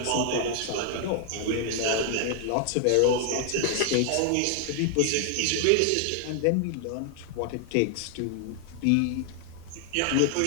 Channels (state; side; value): different; both; correlation 0.00